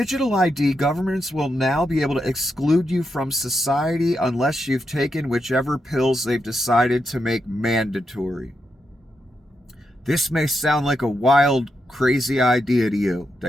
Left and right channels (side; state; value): both; normal; correlation 0.84